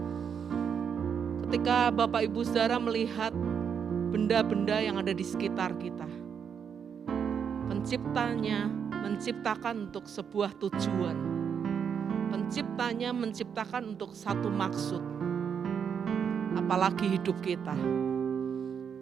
Ketika Bapak Ibu Saudara melihat benda-benda yang ada di sekitar kita, Penciptanya menciptakan untuk sebuah tujuan. Penciptanya menciptakan untuk satu maksud. Apalagi hidup kita.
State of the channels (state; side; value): quieter; left; 7.3 dB